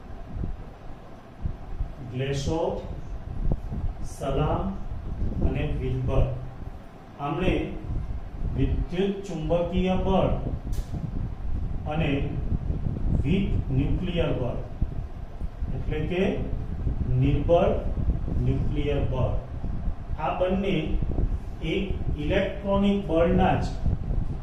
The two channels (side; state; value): both; identical; correlation 1.00